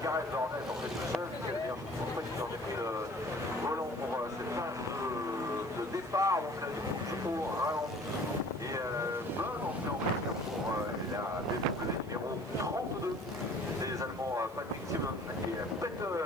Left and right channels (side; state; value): right; noise; hiss, 25 dB below the sound